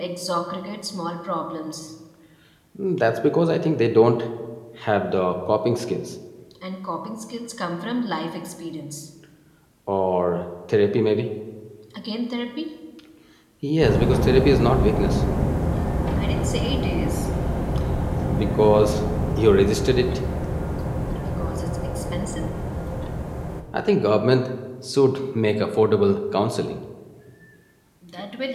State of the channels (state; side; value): identical; both; correlation 1.00